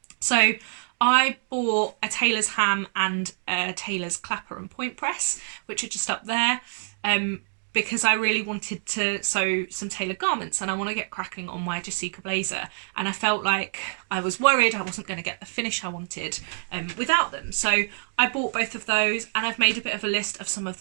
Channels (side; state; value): left; silent; digital silence